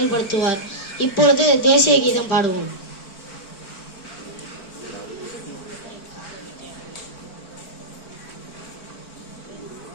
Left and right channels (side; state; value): right; late; 4.5 ms